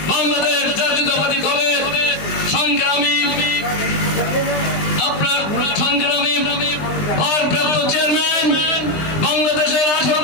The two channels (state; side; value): late; right; 20 ms